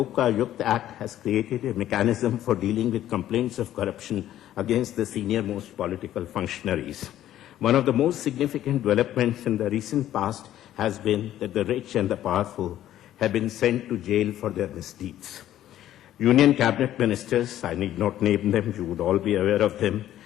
Act has created a mechanism for dealing with complaints of corruption against the senior-most political functionaries. One of the most significant developments in the recent past has been that the rich and the powerful have been sent to jail for their misdeeds. Union cabinet ministers, I need not name them, you would all be aware of them,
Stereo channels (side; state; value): right; quieter; 12.5 dB